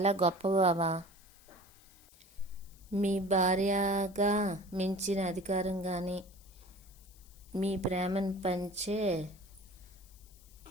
గొప్ప బావా. మీ భార్యగా మించిన అధికారం కానీ మీ ప్రేమను పంచే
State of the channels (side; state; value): left; noise; hiss, 25 dB below the sound